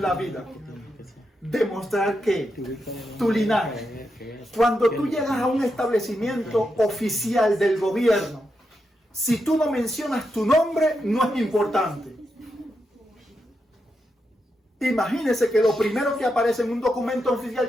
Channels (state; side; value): normal; both; correlation 0.85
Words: la vida. Demostrar que tu linaje, cuando tú llegas a un establecimiento oficial del gobierno, si tú no mencionas tu nombre, no es importante. Imagínese que lo primero que aparece en un documento oficial,